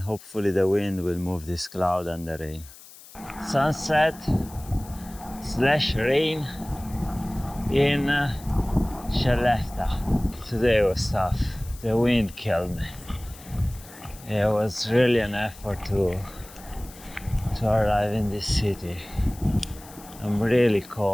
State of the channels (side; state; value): left; noise; hiss, 20 dB below the sound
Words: hopefully the wind will move this cloud and the rain. Sunset/rain in Skellefteå. Today was tough. The wind killed me. It was really an effort to arrive in this city. I'm really